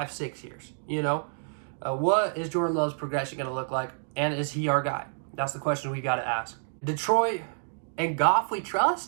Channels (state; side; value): silent; left; digital silence